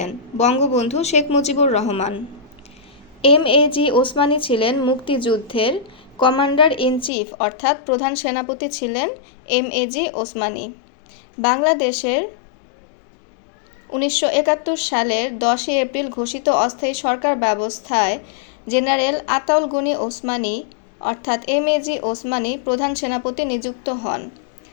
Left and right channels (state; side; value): drops out; right; at 7.1 s